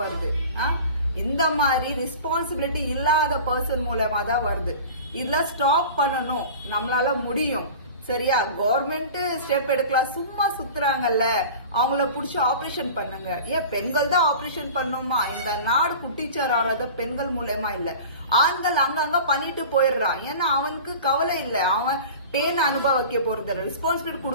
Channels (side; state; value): both; inverted; correlation -0.38